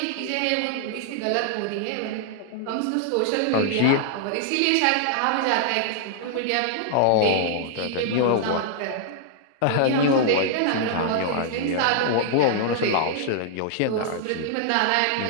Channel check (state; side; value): different; both; correlation -0.01